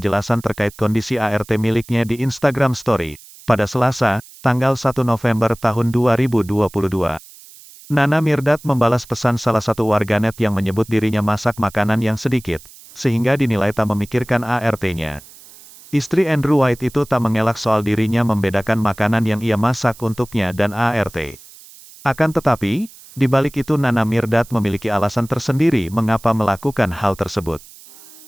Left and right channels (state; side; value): noise; right; hiss, 21 dB below the sound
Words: terkait kondisi ART miliknya di Instagram Story, pada Selasa, tanggal 1 November tahun 2022. Nana Mirdad membalas pesan salah satu warganet yang menyebut dirinya masak makanan yang sedikit, sehingga dinilai tak memikirkan ART-nya. Istri Andrew White itu tak mengelak soal dirinya membedakan makanan yang ia masak untuknya dan ART. Akan tetapi, di balik itu Nana Mirdad memiliki alasan tersendiri mengapa melakukan hal tersebut.